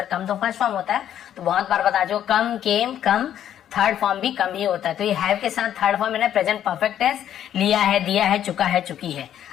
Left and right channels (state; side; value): quieter; right; 10.6 dB